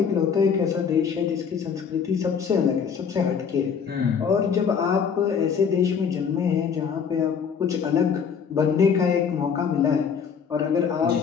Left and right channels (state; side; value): quieter; right; 6.7 dB